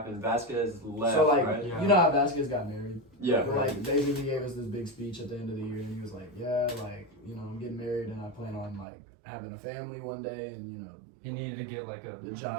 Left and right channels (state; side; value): drops out; left; at 8.8 s